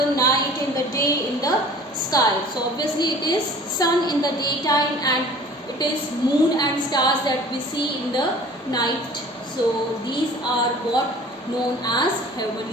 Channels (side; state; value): both; normal; correlation 0.46